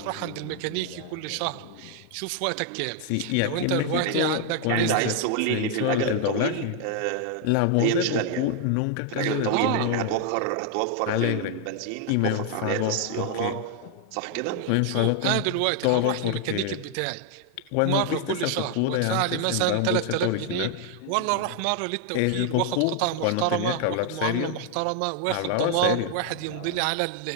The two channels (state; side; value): different; both; correlation 0.00